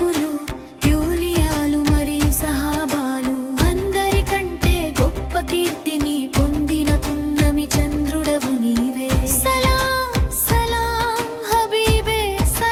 యూలియాలు మరియు సహాబాలు అందరికంటే గొప్ప కీర్తిని పొందిన పున్నమి చంద్రుడవు నీవే సలాం సలాం హబీబే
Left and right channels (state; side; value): identical; both; correlation 1.00